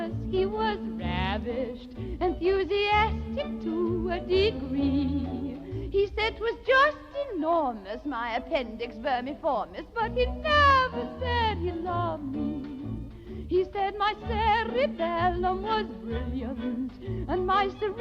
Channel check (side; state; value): both; identical; correlation 1.00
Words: he was ravished, enthusiastic to a degree. He said 'twas just enormous, my appendix vermiformis, but he never said he loved me. He said my cerebellum was brilliant and my